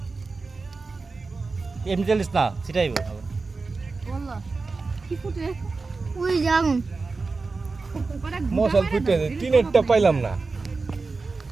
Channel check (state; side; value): quieter; left; 4.0 dB